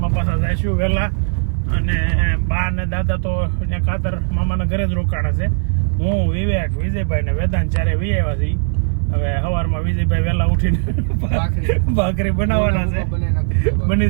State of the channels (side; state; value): left; silent; 67 dB below the other